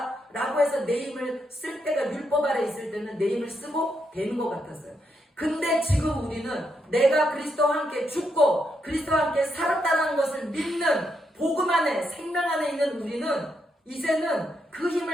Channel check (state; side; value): normal; both; correlation 0.80